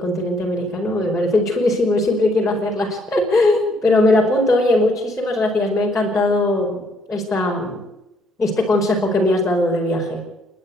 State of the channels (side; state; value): both; normal; correlation 0.68